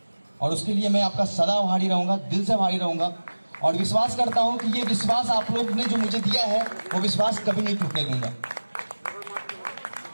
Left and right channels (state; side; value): inverted; both; correlation -1.00